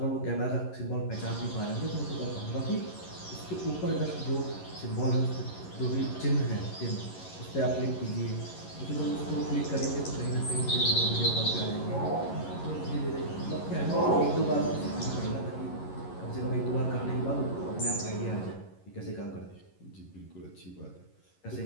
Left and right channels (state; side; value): late; right; 11 ms